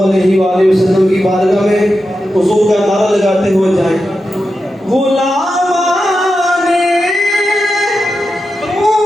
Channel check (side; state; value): both; normal; correlation 0.90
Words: अलैहि वसल्लम की बारगाह में हुजूर का नारा लगाते हुए जाएं। गुलामाने